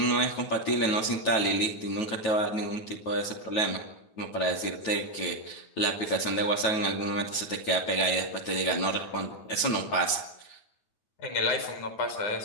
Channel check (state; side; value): late; right; 9.2 ms